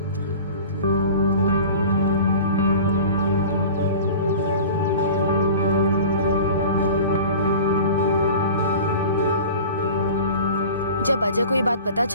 जब अजय को ये बात पता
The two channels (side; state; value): both; inverted; correlation -0.39